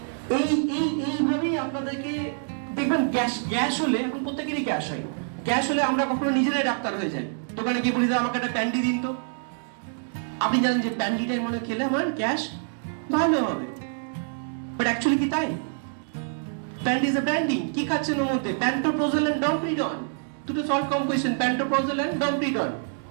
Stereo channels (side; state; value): left; silent; digital silence